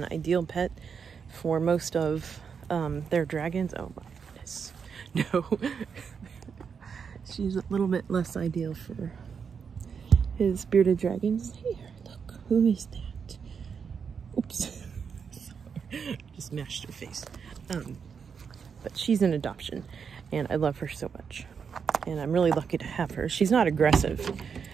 ideal pet for most of their dragons. Oh my goodness. No. She's a little bit less ideal for his bearded dragons. Here, look. Who is that? Oops. Just mashed her face. But she's an adoption, and I love her so much. And I'm really lucky to have her. She's not aggressive.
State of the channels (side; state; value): left; quieter; 6.4 dB